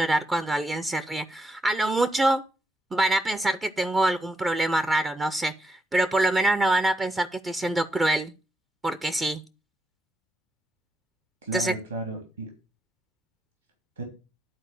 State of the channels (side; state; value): both; normal; correlation 0.83